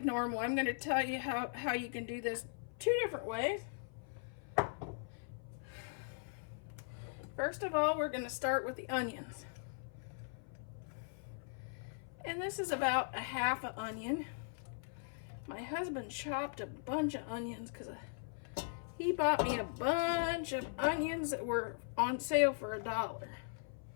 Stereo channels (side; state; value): right; silent; 51 dB below the other